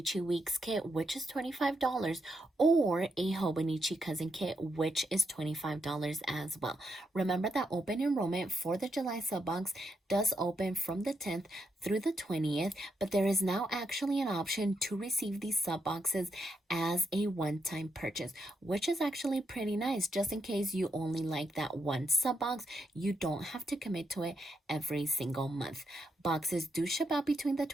Weeks kit, which is $25, or a Hobonichi Cousin kit, which is $25 as well. Remember that open enrollment for the July sub box does open from the 10th through the 20th, but there is now actually an option to receive these sub boxes as a one-time purchase, which is actually pretty nice. Just in case you only like that one sub box, you don't have to commit to it every single month. Boxes do ship out between the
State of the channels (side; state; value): both; normal; correlation 0.81